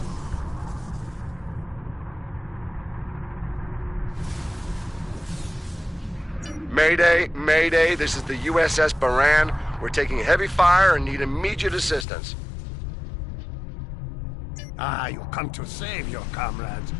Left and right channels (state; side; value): drops out; right; at 12.1 s